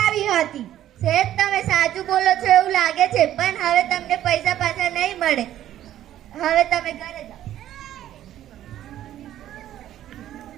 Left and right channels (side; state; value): left; quieter; 12.3 dB